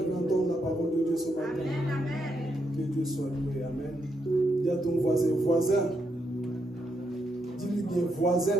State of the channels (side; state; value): left; noise; hum, 29 dB below the sound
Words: veut entendre la parole de Dieu ce matin? Amen. Que Dieu soit loué. Amen. Dis à ton voisin, voisin. Dis-lui bien, voisin,